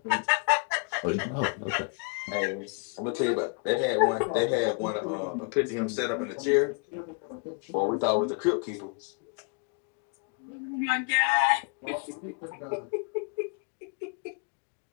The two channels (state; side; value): quieter; right; 35.8 dB